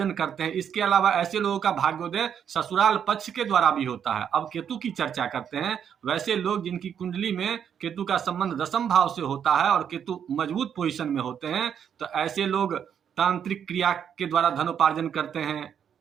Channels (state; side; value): quieter; left; 8.3 dB